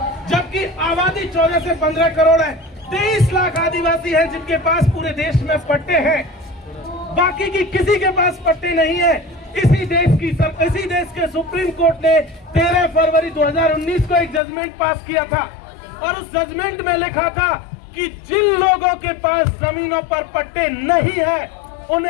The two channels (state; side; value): drops out; right; at 14.4 s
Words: जबकि आबादी 14 से 15 करोड़ है। 23 लाख आदिवासी हैं जिनके पास पूरे देश में पट्टे हैं, बाकी की किसी के पास पट्टे नहीं है। इसी देश के सुप्रीम कोर्ट ने 13 फरवरी 2019 को एक जजमेंट पास किया था, और उस जजमेंट में लिखा था कि जिन लोगों के पास जमीनों पर पट्टे नहीं है,